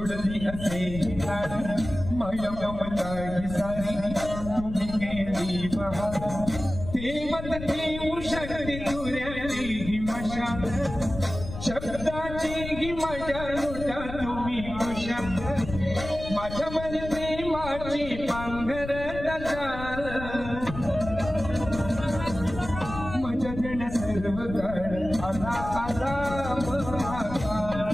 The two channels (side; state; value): left; noise; rumble, 9 dB below the sound